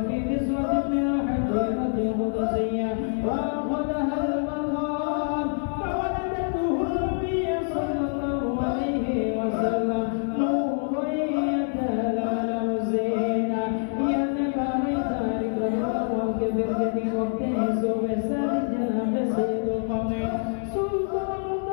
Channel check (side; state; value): right; silent; 61 dB below the other